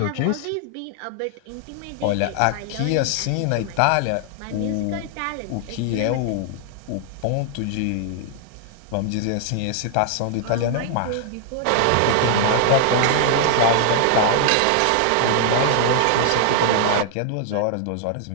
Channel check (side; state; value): both; different; correlation 0.00